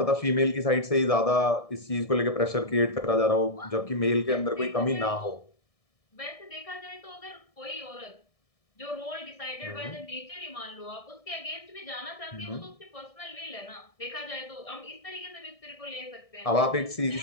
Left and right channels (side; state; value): right; late; 1.6 ms